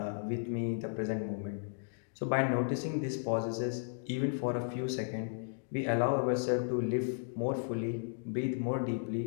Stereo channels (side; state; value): right; silent; digital silence